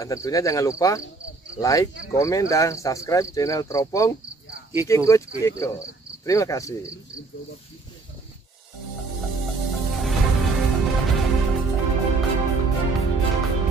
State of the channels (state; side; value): quieter; left; 3.7 dB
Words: tentunya jangan lupa like, komen, dan subscribe channel Teropong Kiko. Terima kasih.